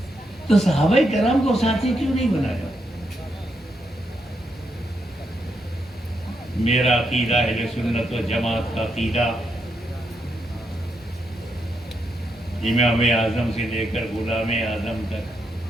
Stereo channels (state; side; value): normal; both; correlation 0.81